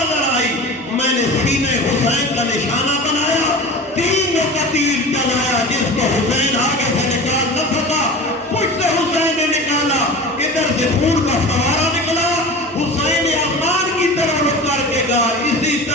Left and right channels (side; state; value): both; normal; correlation 0.34